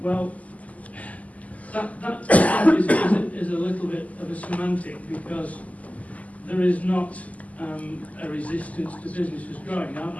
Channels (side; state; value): right; late; 0.073 ms